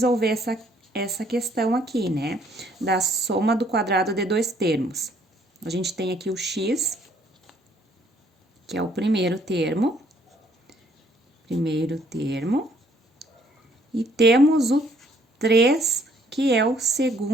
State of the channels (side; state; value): both; normal; correlation 0.64